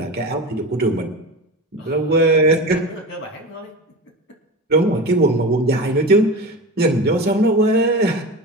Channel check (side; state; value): both; normal; correlation 0.28